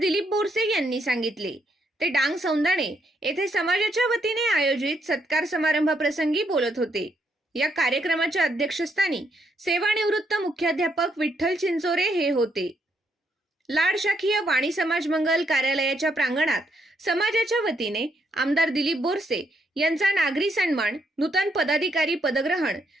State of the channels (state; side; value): normal; both; correlation 0.75